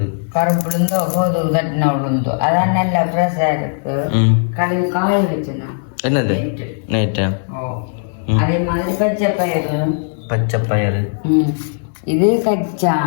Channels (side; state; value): right; silent; 68 dB below the other